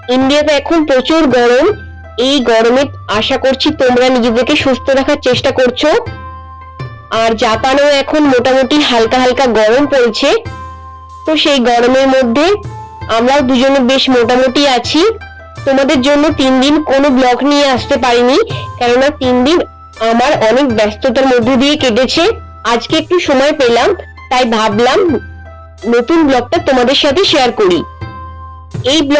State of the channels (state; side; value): identical; both; correlation 1.00